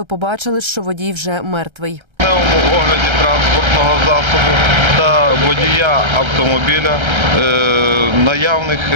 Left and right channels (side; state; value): left; late; 1.3 ms